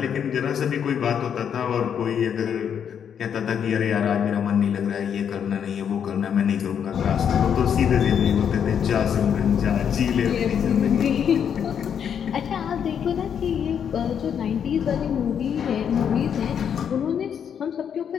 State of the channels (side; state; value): right; quieter; 8.1 dB